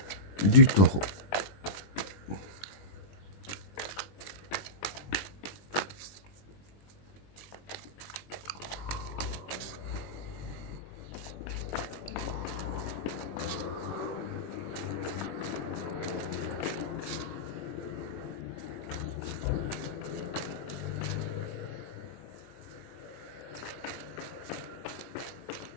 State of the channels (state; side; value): late; right; 20 ms